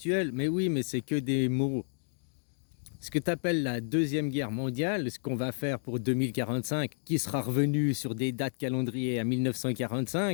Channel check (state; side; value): silent; right; digital silence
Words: Mais oui, mais c'est que des mots. Ce que tu appelles la Deuxième Guerre mondiale, ce qu'on va faire pour 2045, qui sera revenu sur des dates calendrier à